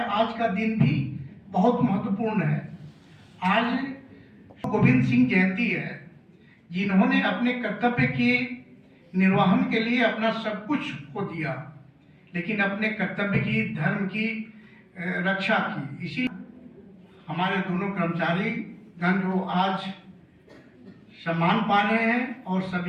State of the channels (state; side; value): identical; both; correlation 1.00